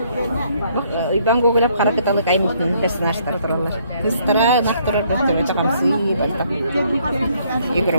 Ben Google'da karakitalık aymıştım personajlar dururlar. Kızlara naktırar gösterme çakamsı batak. Yugura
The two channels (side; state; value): both; inverted; correlation -0.67